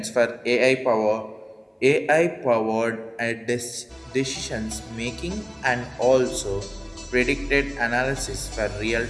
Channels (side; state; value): both; identical; correlation 1.00